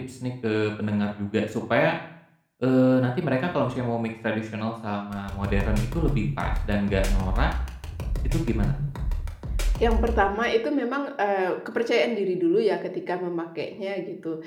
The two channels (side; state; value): both; identical; correlation 1.00